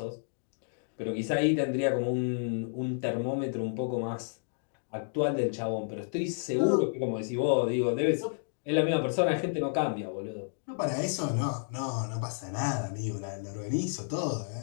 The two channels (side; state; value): right; silent; digital silence